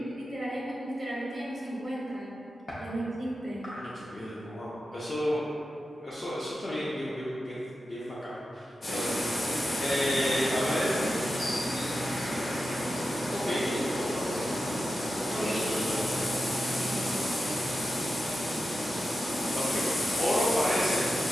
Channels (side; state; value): both; normal; correlation 0.91